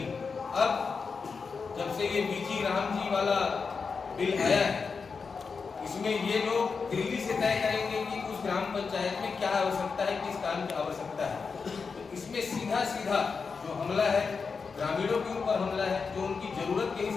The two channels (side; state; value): right; quieter; 5.1 dB